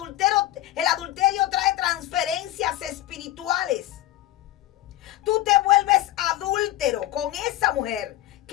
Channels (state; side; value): quieter; right; 15.0 dB